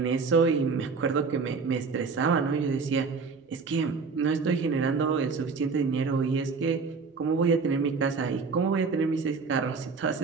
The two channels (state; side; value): quieter; left; 4.8 dB